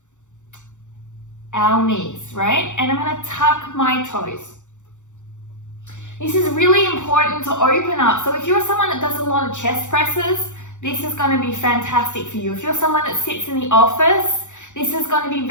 our knees, right? And I'm going to tuck my toes. This is really important to open up. So if you're someone that does a lot of chest presses, this is going to be fantastic for you. If you're someone that sits in the office, this is going to be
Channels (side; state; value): right; late; 0.85 ms